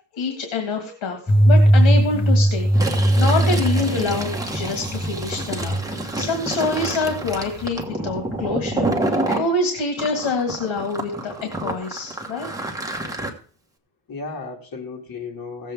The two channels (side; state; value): both; normal; correlation 0.63